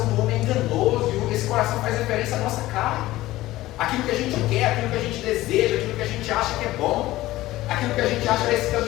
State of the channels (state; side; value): quieter; right; 16.8 dB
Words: do homem é enganoso, e esse coração faz referência à nossa carne, aquilo que a gente quer, aquilo que a gente deseja, aquilo que a gente acha que é bom, aquilo que a gente acha que esse